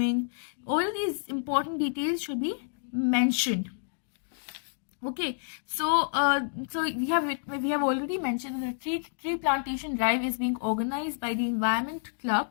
All these important details should be mentioned. Okay, so we have already mentioned that the tree plantation drive is being organized by the Environment Club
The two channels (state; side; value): silent; right; digital silence